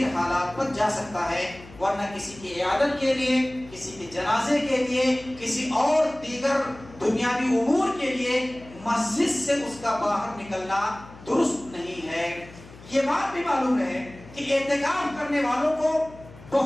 حالات پر جا سکتا ہے، ورنہ کسی کی عیادت کے لیے، کسی کے جنازے کے لیے، کسی اور دیگر دنیاوی امور کے لیے مسجد سے اس کا باہر نکلنا درست نہیں ہے۔ یہ بات بھی معلوم ہے کہ اعتکاف کرنے والوں کو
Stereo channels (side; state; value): left; noise; hum, 20 dB below the sound